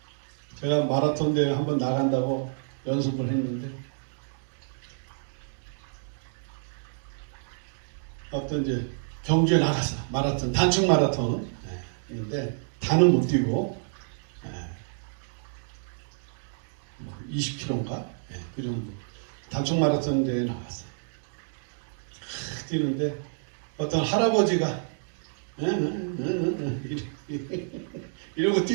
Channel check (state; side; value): silent; left; digital silence